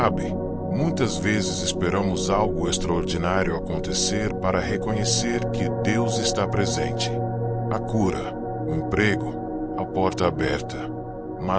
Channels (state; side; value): identical; both; correlation 1.00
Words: muitas vezes esperamos algo extraordinário acontecer para reconhecer que Deus está presente. A cura, o emprego, a porta aberta.